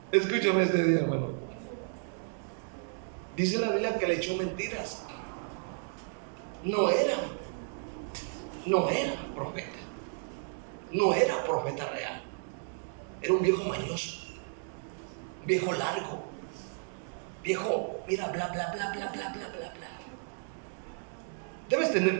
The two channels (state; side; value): silent; left; 56 dB below the other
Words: Escúchame este día, hermano. Dice la Biblia que le echó mentiras. No era profeta. No era profeta real. Era un viejo mañoso, viejo largo, viejo, mira, bla, bla, bla, bla, bla, bla, bla, bla. Debes